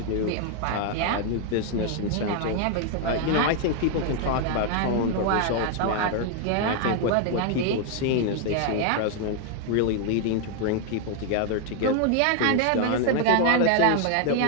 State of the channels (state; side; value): different; both; correlation 0.00